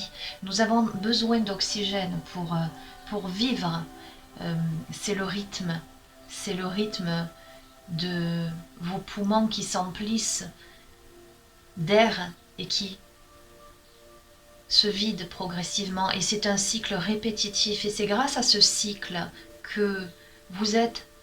Nous avons besoin d'oxygène pour vivre. C'est le rythme de vos poumons qui s'emplissent d'air et qui se vident progressivement. Et c'est un cycle répétitif. Et c'est grâce à ce cycle que vous êtes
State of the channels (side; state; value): both; identical; correlation 1.00